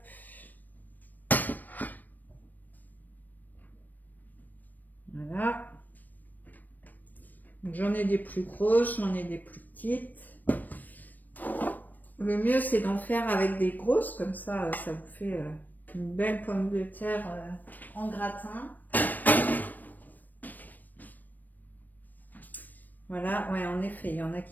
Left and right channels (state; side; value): late; right; 0.087 ms